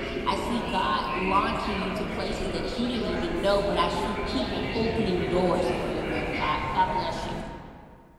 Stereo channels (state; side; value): identical; both; correlation 1.00